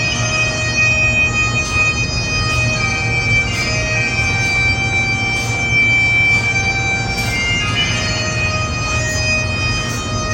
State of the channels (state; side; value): identical; both; correlation 1.00